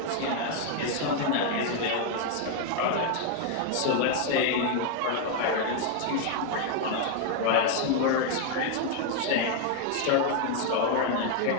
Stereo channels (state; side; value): different; both; correlation 0.00